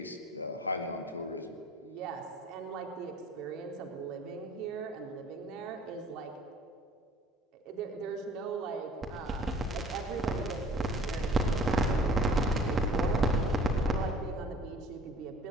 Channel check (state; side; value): normal; both; correlation 0.49